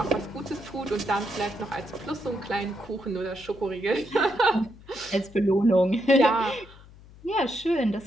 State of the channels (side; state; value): left; noise; hum, 21 dB below the sound